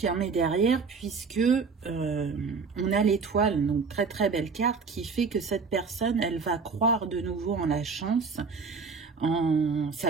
derrière puisque on a l'étoile, donc très très belle carte qui fait que cette personne, elle va croire de nouveau en la chance, en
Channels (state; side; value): quieter; left; 5.0 dB